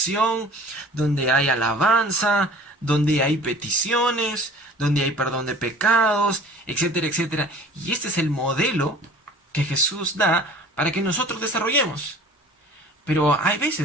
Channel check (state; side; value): normal; both; correlation 0.46